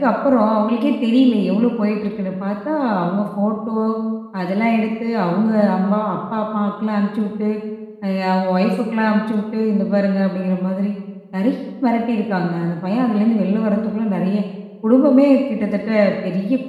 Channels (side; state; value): both; identical; correlation 1.00